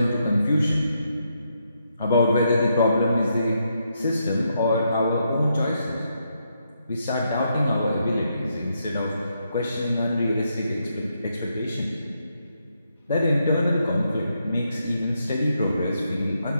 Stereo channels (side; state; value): both; inverted; correlation -0.80